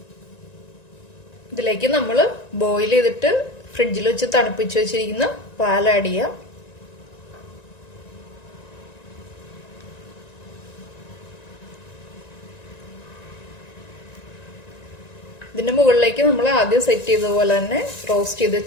ഇതിലേക്ക് നമ്മൾ ബോയിൽ ചെയ്തിട്ട് ഫ്രിഡ്ജിൽ വെച്ച് തണുപ്പിച്ച് വെച്ചിരിക്കുന്ന പാൽ ആഡ് ചെയ്യാം. ഇതിന്റെ മുകളിലേക്ക് നമ്മൾ ആദ്യം സെറ്റ് ചെയ്തതുപോലെ തന്നെ റോസ്റ്റ് ചെയ്ത്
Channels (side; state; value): right; late; 1.9 ms